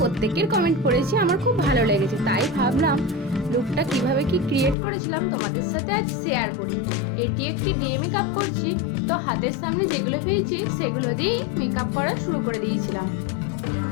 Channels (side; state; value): right; drops out; at 4.8 s